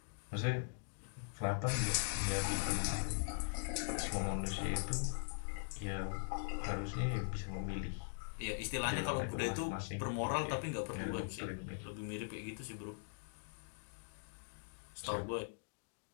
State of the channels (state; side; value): silent; right; digital silence